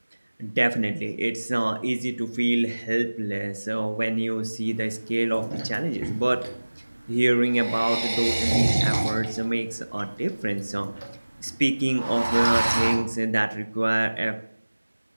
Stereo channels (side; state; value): both; inverted; correlation -1.00